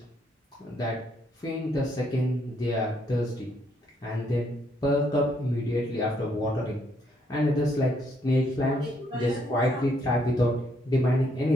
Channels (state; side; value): normal; both; correlation 0.72